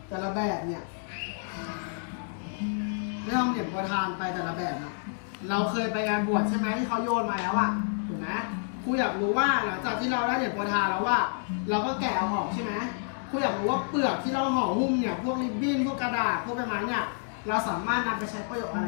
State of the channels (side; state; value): right; silent; digital silence